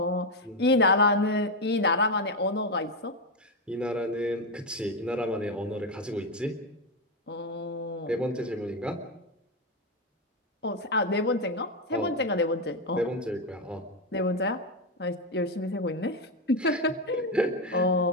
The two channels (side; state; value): both; normal; correlation 0.08